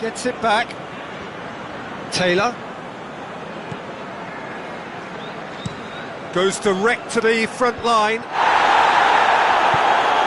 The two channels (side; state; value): both; identical; correlation 1.00